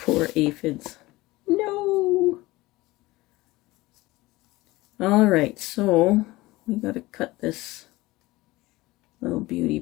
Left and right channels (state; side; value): quieter; right; 19.8 dB